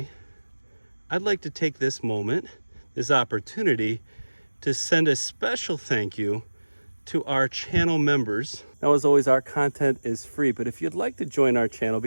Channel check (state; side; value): inverted; both; correlation -1.00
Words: I'd like to take this moment, this opportunity, to send a special thank you to our channel members. Now, as always, our content is free, but if you'd like to join our channel,